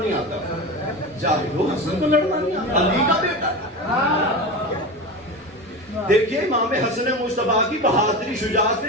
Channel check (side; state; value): both; normal; correlation 0.25